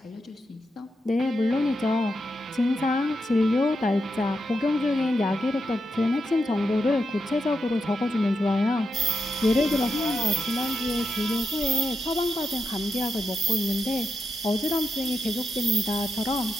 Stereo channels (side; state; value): both; normal; correlation 0.86